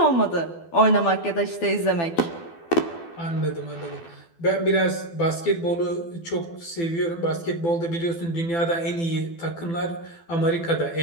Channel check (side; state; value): right; late; 12 ms